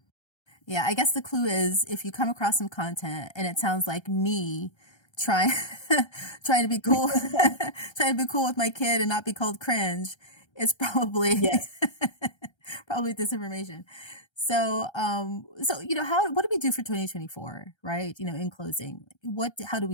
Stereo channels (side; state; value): right; late; 1.3 ms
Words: Yeah, I guess the clue is if you come across some content and it sounds like me trying trying to be cool trying to be cool with my kid and not be called cringe, it's probably Yes. probably disinformation. So how what do we do for 2024, right? In closing, how do